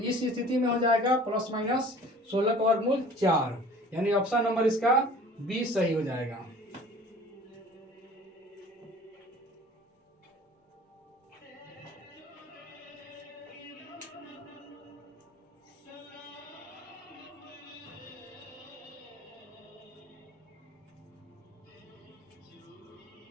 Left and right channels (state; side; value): normal; both; correlation 0.47